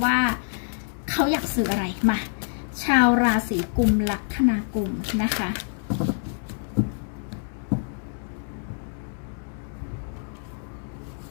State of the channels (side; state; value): right; silent; 61 dB below the other